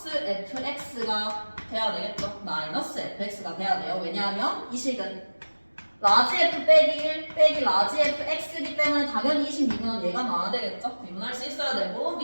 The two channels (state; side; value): inverted; both; correlation -1.00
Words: fx가 돼야 되겠죠. 마이너스 fx가 돼야 돼요. 왜냐하면 이 식은 라지 f 빼기 1 빼기 라지 fx이기 때문에 당연히 이 식 미분은 얘가 나와야 되겠죠. 미분할 수 있어야 되고